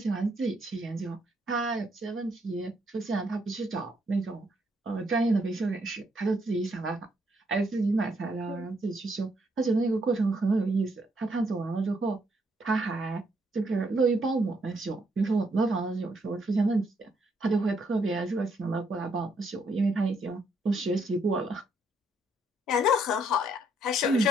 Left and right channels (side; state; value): both; normal; correlation 0.73